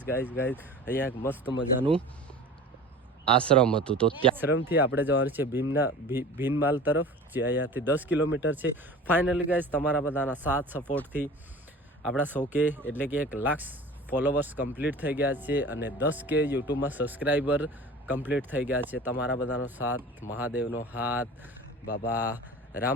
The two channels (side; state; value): both; normal; correlation 0.39